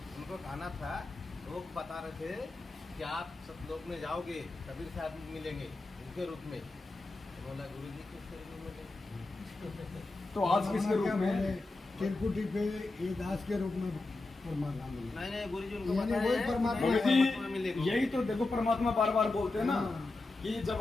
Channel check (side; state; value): right; quieter; 3.2 dB